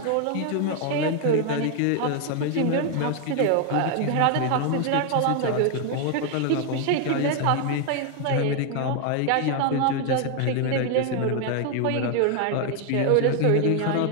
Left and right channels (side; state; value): both; different; correlation 0.01